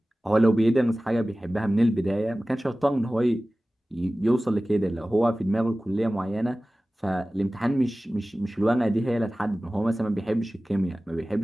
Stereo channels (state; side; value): normal; both; correlation 0.97